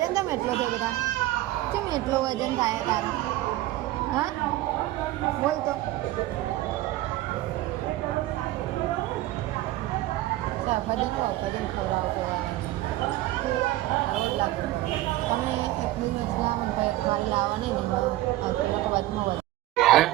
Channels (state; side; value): quieter; left; 16.3 dB